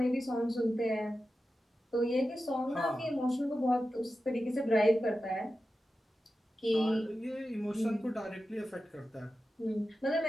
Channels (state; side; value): normal; both; correlation 0.92